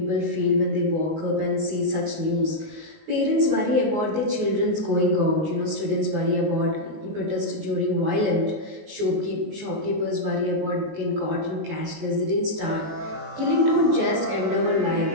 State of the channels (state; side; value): late; left; 19 ms